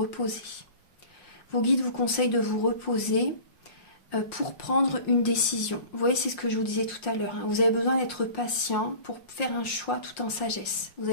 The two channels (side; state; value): right; late; 5.6 ms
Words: Vos guides vous conseillent de vous reposer pour prendre une décision. Vous voyez, c'est ce que je vous disais tout à l'heure. Hein. Vous avez besoin d'être patient pour faire un choix tout en sagesse. Vous